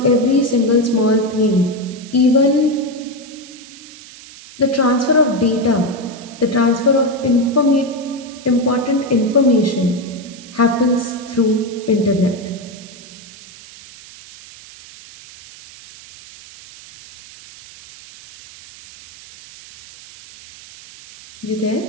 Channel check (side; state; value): right; noise; hiss, 19 dB below the sound